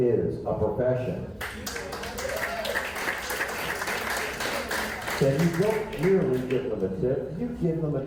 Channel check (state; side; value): identical; both; correlation 1.00